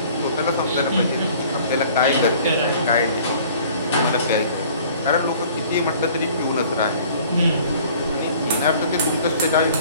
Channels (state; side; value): inverted; both; correlation -0.52